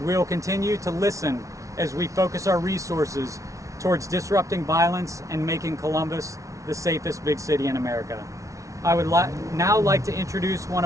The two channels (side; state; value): left; late; 0.15 ms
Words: We will continue to listen as we focus our resources towards disrupting violence and making Columbus the safest big city in America. I would now like to introduce one